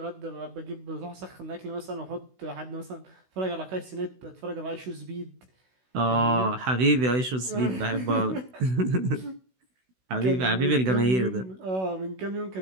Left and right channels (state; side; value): late; left; 16 ms